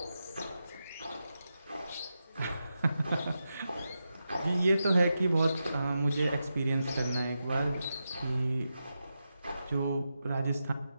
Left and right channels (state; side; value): inverted; both; correlation -0.88